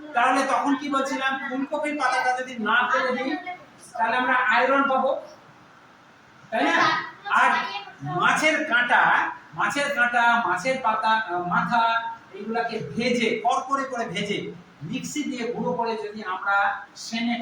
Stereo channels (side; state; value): both; identical; correlation 1.00